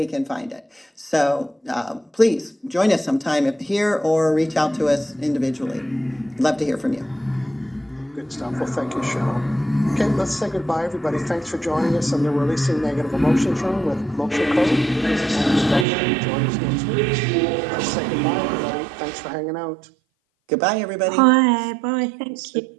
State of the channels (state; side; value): drops out; left; at 15.9 s